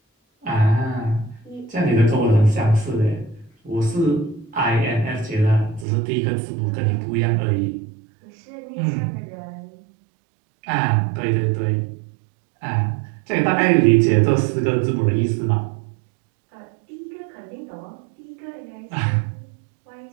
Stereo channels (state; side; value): drops out; left; at 5.9 s